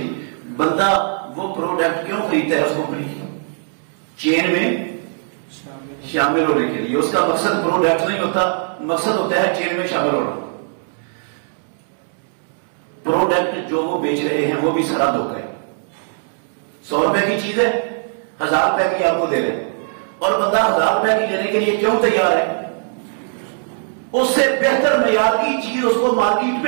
بندہ وہ پروڈکٹ کیوں خریدتا ہے اس کمپنی کی؟ چین میں شامل ہونے کے لیے. اس کا مقصد پروڈکٹ نہیں ہوتا, مقصد ہوتا ہے چین میں شامل ہونا. پروڈکٹ جو وہ بیچ رہے ہیں وہ بھی سارا دھوکا ہے. 100 روپے کی چیز ہے, 1000 روپے کی آپ کو دے رہے ہیں, اور بندہ 1000 روپے کی لینے کے لیے کیوں تیار ہے؟ اس سے بہتر معیار کی چیز اس کو مارکیٹ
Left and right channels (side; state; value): left; silent; 66 dB below the other